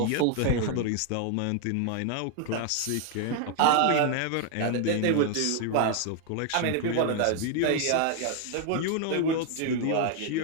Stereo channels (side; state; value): both; different; correlation 0.00